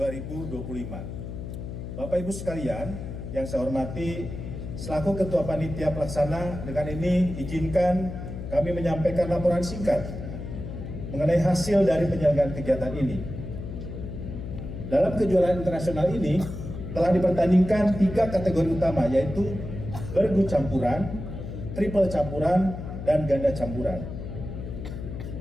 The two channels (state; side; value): noise; left; hum, 8 dB below the sound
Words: Bapak Ibu sekalian yang saya hormati, selaku Ketua Panitia Pelaksana, dengan ini izinkan kami menyampaikan laporan singkat mengenai hasil dari penyelenggaraan kegiatan ini. Dalam kejuaraan internasional ini telah dipertandingkan 3 kategori utama, yaitu bergu campuran, triple campuran, dan ganda campuran.